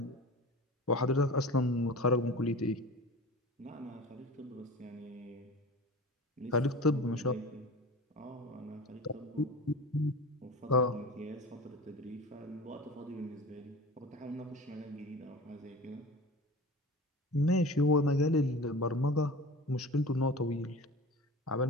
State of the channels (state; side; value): normal; both; correlation 0.35